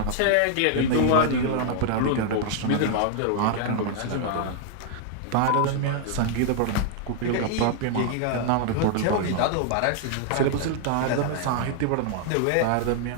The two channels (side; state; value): both; different; correlation -0.01